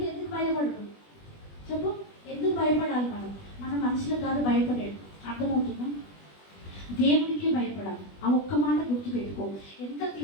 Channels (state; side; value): late; right; 20 ms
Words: భయపడదు చెప్పు? ఎందుకు భయపడాలి? మనం మనుషులకు కాదు భయపడేది. అర్థమవుతుందా? దేవుడికే భయపడాలి. ఆ ఒక్క మాట గుర్తుపెట్టుకో. ఎంత